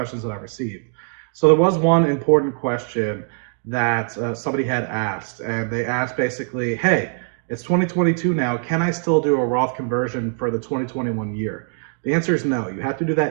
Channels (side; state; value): left; silent; 62 dB below the other